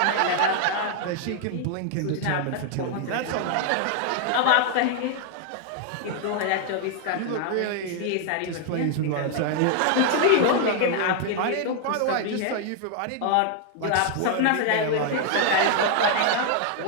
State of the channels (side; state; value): both; different; correlation 0.00